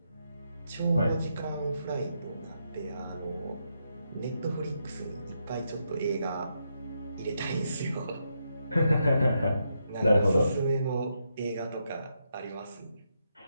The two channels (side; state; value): both; inverted; correlation -0.81